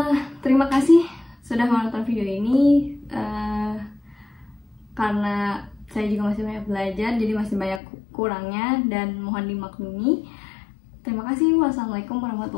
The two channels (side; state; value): right; drops out; at 7.8 s